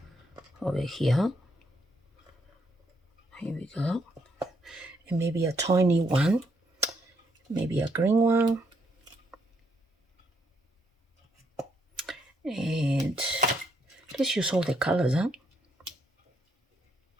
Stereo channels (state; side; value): normal; both; correlation 0.73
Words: over here. Here we go. And maybe a tiny one, maybe a green one. And let's use all the colors, huh?